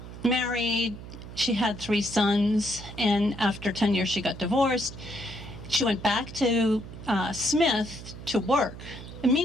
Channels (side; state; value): right; noise; hum, 13 dB below the sound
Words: married, she had 3 sons, and after 10 years she got divorced. She went back to Smith to work. And